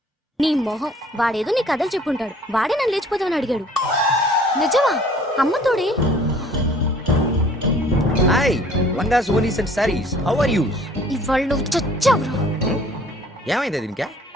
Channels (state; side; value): normal; both; correlation 0.54